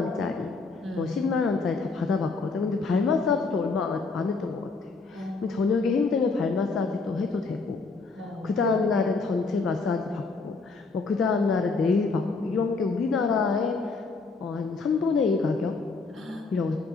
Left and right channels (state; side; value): quieter; right; 4.1 dB